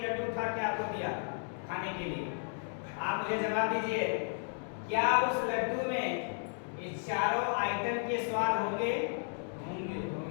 लड्डू उठा के आपको दिया खाने के लिए। आप मुझे जवाब दीजिए, क्या उस लड्डू में ये चारों आइटम के स्वाद होंगे?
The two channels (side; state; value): right; silent; 55 dB below the other